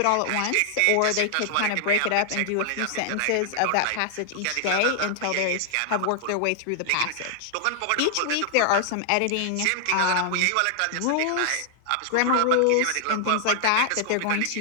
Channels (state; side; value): different; both; correlation 0.00